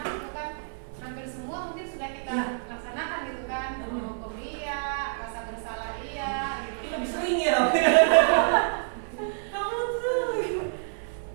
itu kan hampir semua mungkin sudah kita laksanakan gitu kan, menghukum dia, rasa bersalah iya, gitu. Ini lebih sering ya. Kamu tuh.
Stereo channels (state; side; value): silent; left; 56 dB below the other